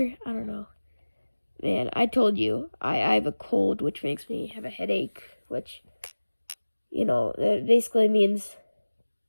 I don't know. Man, I told you, I have a cold, which makes me have a headache, which, that basically means,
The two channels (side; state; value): both; inverted; correlation -1.00